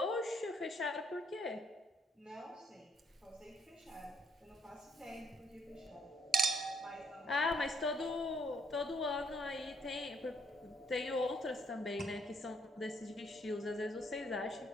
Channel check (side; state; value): both; normal; correlation 0.70